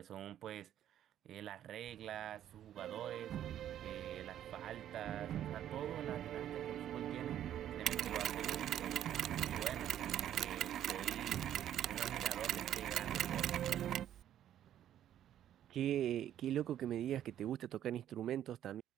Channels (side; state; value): left; quieter; 11.1 dB